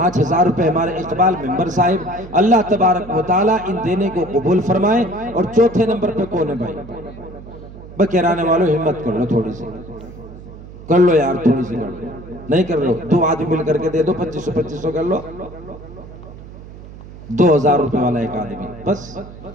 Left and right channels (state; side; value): noise; right; hum, 16 dB below the sound